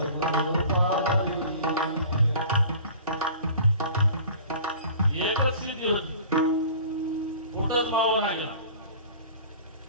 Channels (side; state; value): both; inverted; correlation -0.44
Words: एकच सिद्धी होती कुठंच मावा नाही गेला